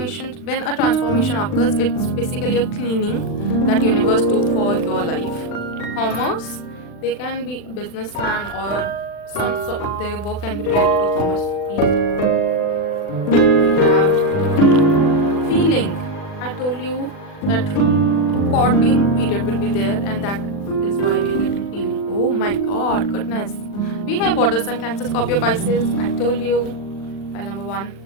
when a transformation occurs, it's basically a cleaning that universe do for your life. Commerce. They can be a businessman or some sort. Their work can be related to commerce field. Feeling. I told you that courting period will be there, and that is why we are getting feeling. Oh my god, goodness. We have water sign, Cancer, Scorpio, Pisces. I told you. File number 1.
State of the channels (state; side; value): late; right; 40 ms